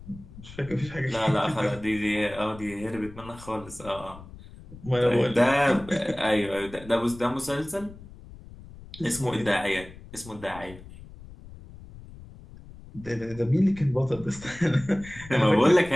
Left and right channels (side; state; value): left; noise; rumble, 17 dB below the sound